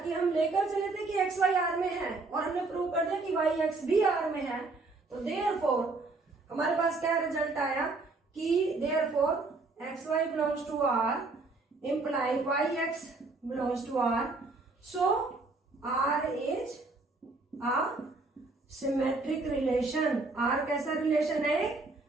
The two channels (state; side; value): quieter; left; 3.5 dB